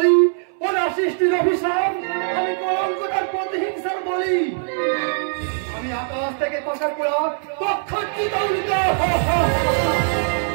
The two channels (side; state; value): left; silent; 63 dB below the other